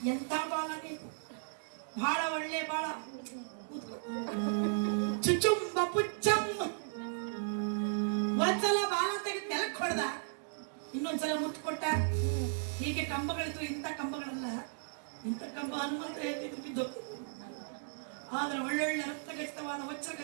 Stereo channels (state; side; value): silent; left; digital silence